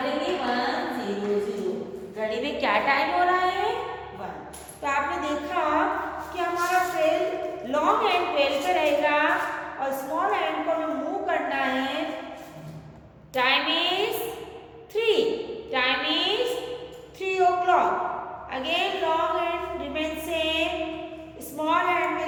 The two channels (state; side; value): identical; both; correlation 1.00